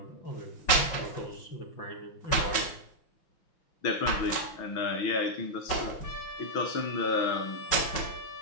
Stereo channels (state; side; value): late; right; 5.4 ms